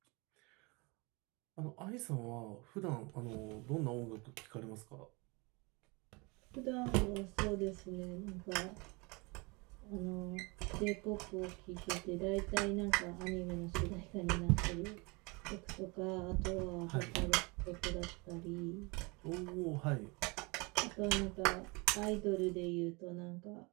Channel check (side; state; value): left; quieter; 27.8 dB